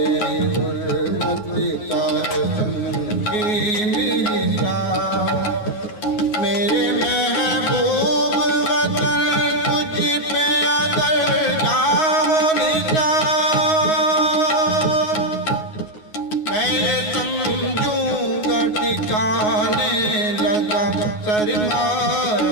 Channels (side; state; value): right; late; 9.5 ms